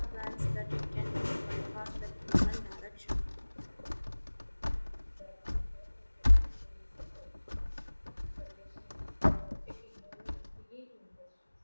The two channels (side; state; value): both; inverted; correlation -1.00